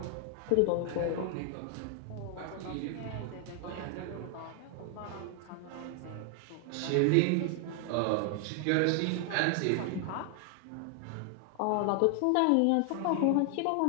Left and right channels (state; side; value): different; both; correlation 0.00